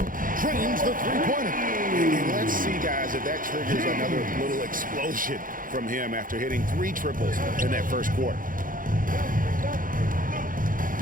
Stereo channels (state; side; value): late; left; 0.40 ms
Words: Trains the three-pointer. And let's see, guys, if that triggers another little explosion from him after hitting 3 triples in that first quarter.